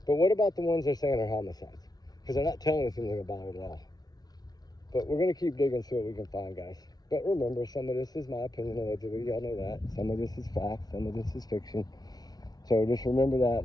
But what about the ones they're saying are homicides? Because they're not telling us anything about it at all. But we're going to keep digging, see what we can find, guys. But remember, some of this is my opinion, allegedly. Y'all know that. Some of this is fact. Some of this is fiction. So just remember that,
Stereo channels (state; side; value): late; right; 0.19 ms